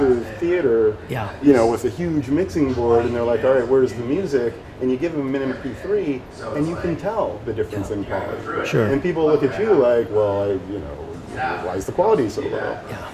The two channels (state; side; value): identical; both; correlation 1.00